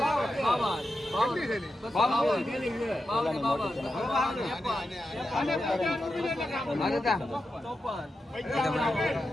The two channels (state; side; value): normal; both; correlation 0.89